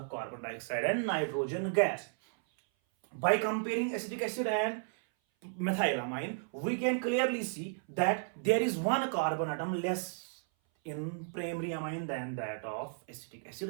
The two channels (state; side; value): silent; left; 55 dB below the other